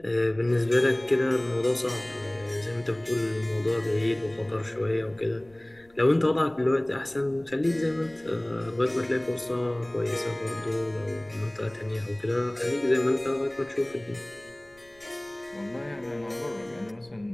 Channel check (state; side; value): noise; left; rumble, 29 dB below the sound